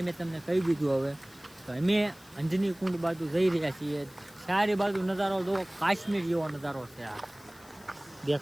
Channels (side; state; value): left; noise; hiss, 24 dB below the sound